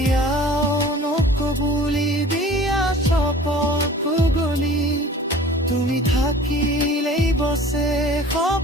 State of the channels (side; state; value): both; normal; correlation 0.45